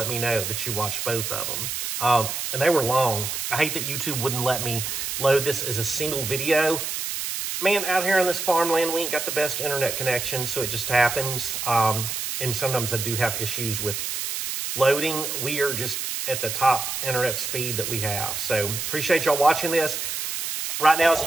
me know that you watched both of them. And they were long. I hate that YouTube wouldn't let me load this as a single video. Man, out here on this farmland, we ain't got the best internet connection, so it just happens. And sometimes I do have issues with loading. We are just at the top internet speed that we have. So appreciate y'all watching this. Right now, as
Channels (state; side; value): noise; right; hiss, 3 dB below the sound